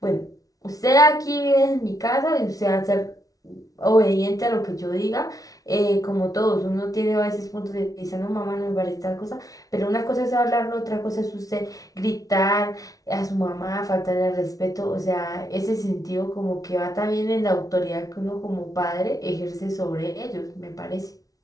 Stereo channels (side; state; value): right; late; 0.18 ms